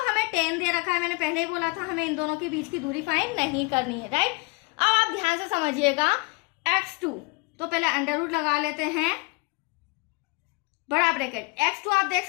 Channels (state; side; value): quieter; right; 28.2 dB